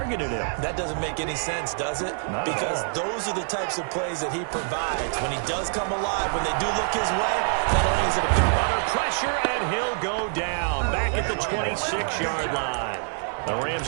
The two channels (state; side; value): silent; left; 61 dB below the other